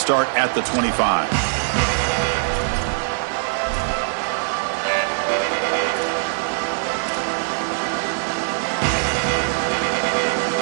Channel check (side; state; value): left; silent; digital silence